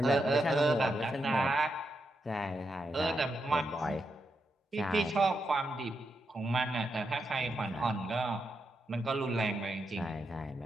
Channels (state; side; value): normal; both; correlation 0.84